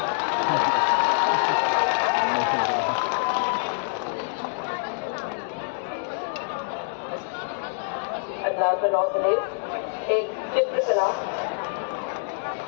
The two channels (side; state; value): right; silent; 60 dB below the other